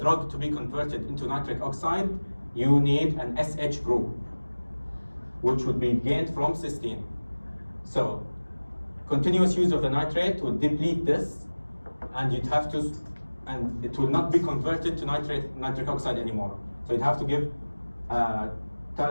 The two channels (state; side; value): inverted; both; correlation -1.00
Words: to be converted into nitric oxide, you need an SH group, which would be gained from cysteine. So continuous use of the nitrate would deplete this, and it will not be converted to nitric oxide anymore. So you'd have to give a